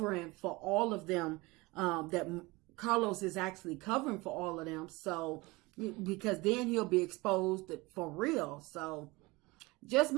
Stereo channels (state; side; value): quieter; left; 23.0 dB